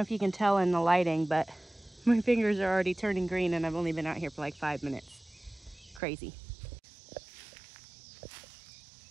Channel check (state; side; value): drops out; left; at 6.0 s